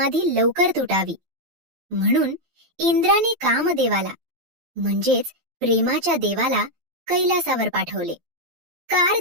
लवकर तुटावी. म्हणून इंद्राने कामदेवाला म्हणजेच प्रेमाच्या देवाला कैलासावर पाठवले.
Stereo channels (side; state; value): left; late; 12 ms